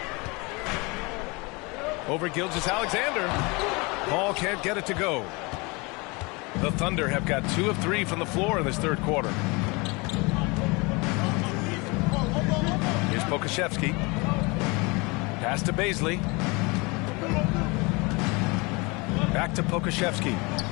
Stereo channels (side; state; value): right; quieter; 27.2 dB